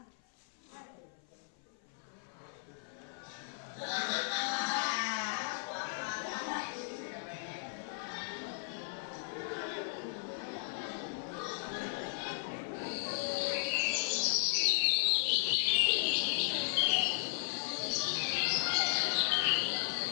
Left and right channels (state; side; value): silent; right; 54 dB below the other